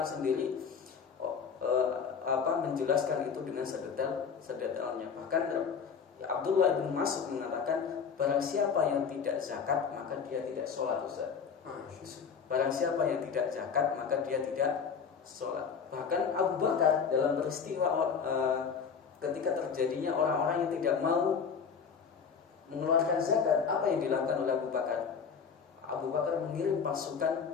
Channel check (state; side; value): quieter; right; 6.3 dB